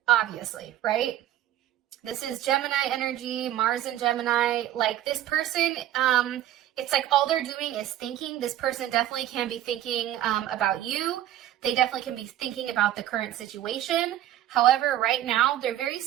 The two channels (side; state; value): left; quieter; 12.6 dB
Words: obviously, right? This is Gemini energy, Mars and Gemini. Like, this person, it's like all they're doing is thinking. This person definitely can be thinking about you. They definitely can be thinking about the current situation. However, right now, they're very